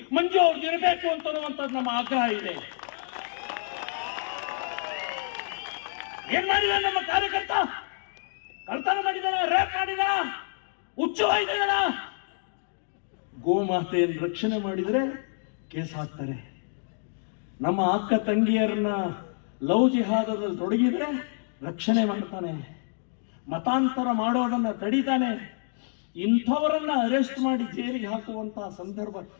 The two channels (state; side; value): silent; right; digital silence